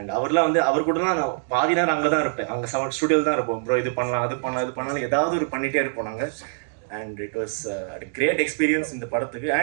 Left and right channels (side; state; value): left; silent; digital silence